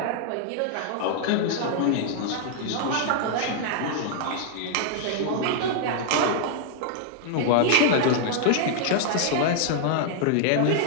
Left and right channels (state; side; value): different; both; correlation -0.01